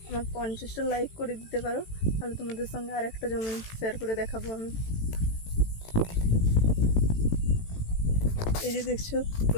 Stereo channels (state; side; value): late; right; 18 ms